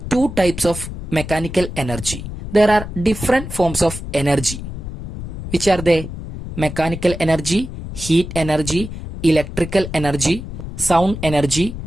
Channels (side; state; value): left; noise; rumble, 9 dB below the sound